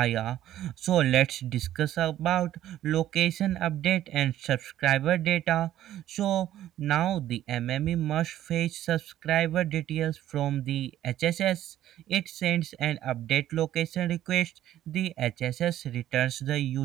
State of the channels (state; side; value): quieter; left; 12.7 dB